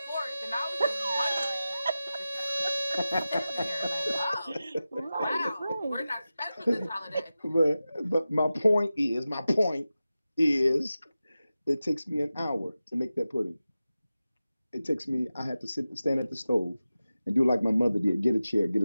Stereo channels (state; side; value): inverted; both; correlation -0.94